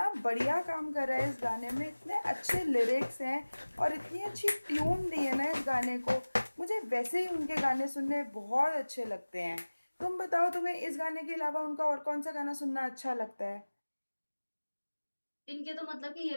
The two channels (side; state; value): both; inverted; correlation -1.00